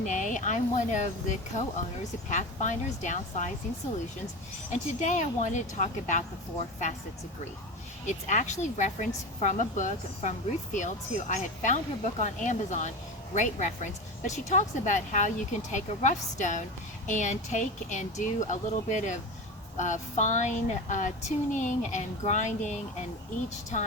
I'm one of the co-owners of Pathfinders Downsizing Solutions, and today I wanted to talk about the 4 facets of grief. It's actually referenced from a book from Ruth E, who I had found her book on Amazon, great reference, but she talks about how you can take a rough stone and do a little bit of fine tuning and grinding, and each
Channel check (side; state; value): both; normal; correlation 0.25